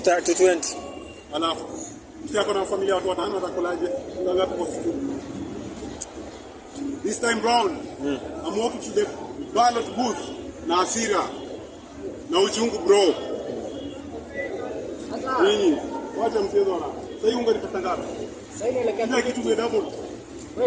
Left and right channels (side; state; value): both; identical; correlation 1.00